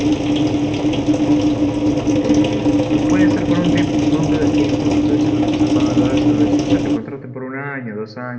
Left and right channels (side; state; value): both; identical; correlation 1.00